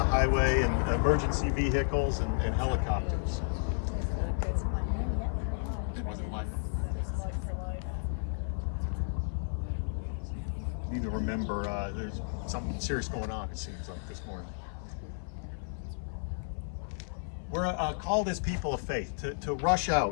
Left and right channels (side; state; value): right; silent; 56 dB below the other